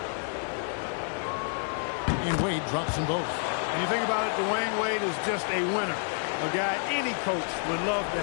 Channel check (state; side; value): silent; right; 59 dB below the other